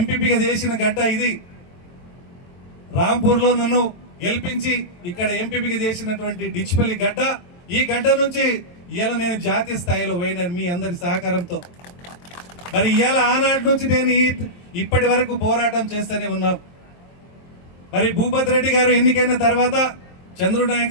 చేసిన గడ్డ ఇది. రాంపూర్లో నన్ను గెలిపించి ఇక్కడ ఎంపీపీగా చేసినటువంటి డిచ్పల్లి గడ్డ. ఈ గడ్డ నుంచి ఇవాళ నేను జాతీయ స్థాయిలో పోయినాను మీ అందరి సహకారంతో. మరి ఇవాళ ఆనాటి నుంచి నేను ఇప్పటి వరకు పోరాటం చేస్తూనే ఉన్నాం. మరి భూపత్ రెడ్డి గారు ఎన్నికైన తర్వాత చంద్రుడు నాయక్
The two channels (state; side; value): late; right; 23 ms